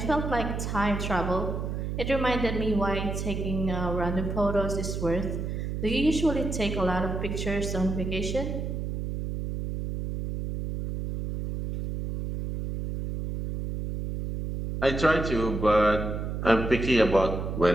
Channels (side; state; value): right; noise; hum, 4 dB below the sound